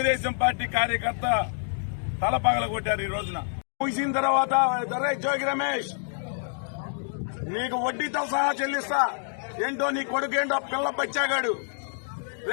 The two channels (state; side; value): silent; right; digital silence